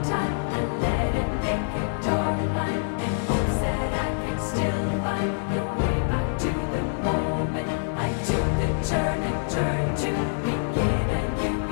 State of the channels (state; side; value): silent; right; 61 dB below the other